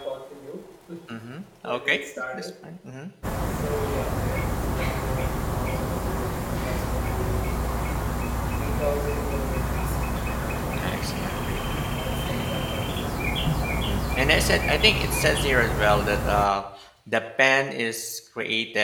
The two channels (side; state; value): both; identical; correlation 1.00